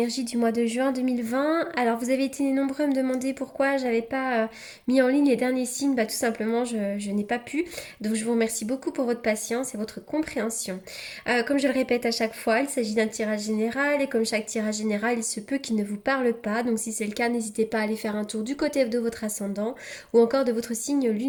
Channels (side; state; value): both; identical; correlation 1.00